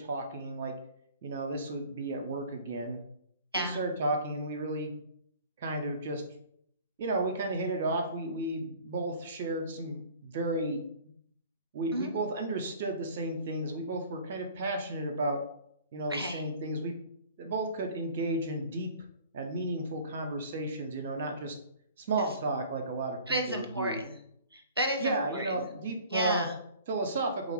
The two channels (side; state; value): both; inverted; correlation -0.48